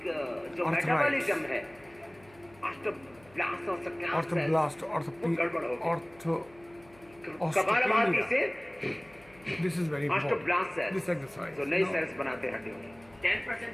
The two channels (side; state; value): left; noise; hum, 26 dB below the sound